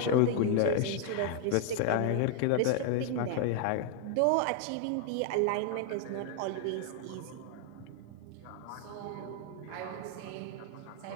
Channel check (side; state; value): both; different; correlation 0.00